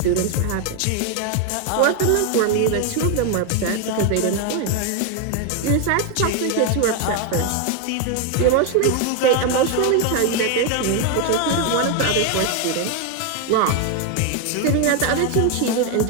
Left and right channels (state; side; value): different; both; correlation 0.01